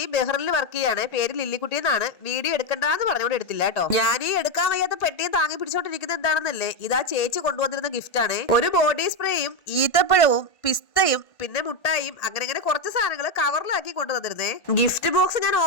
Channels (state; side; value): late; right; 1.5 ms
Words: ബഹ്റിനിൽ വർക്ക് ചെയ്യാണ്, പേര് ലില്ലിക്കുട്ടി എന്നാണ്. വീഡിയോ എടുക്കണ്ടെന്ന് പറഞ്ഞുകൊണ്ട് എടുത്തില്ല കേട്ടോ. ഞാൻ ഈ എടുക്കാൻ വയ്യാത്ത പെട്ടിയും താങ്ങി പിടിച്ചോണ്ടിരിക്കുന്നത് എന്താണെന്നല്ലേ, ഇതാ ചേച്ചി കൊണ്ടുവന്നിരുന്ന ഗിഫ്റ്റ് ആണ്. ഒരു ബോഡി സ്പ്രേയും ഈത്തപ്പഴവും പിസ്തയും പിന്നെ മുട്ടായും അങ്ങനെ കുറച്ച് സാധനങ്ങൾ കവറിലാക്കി കൊണ്ടുവന്നിരുന്നേ. ഗിഫ്റ്റ് ബോക്സ് ഞാൻ